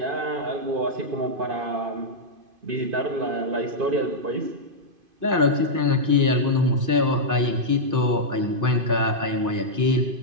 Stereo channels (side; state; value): left; late; 2.5 ms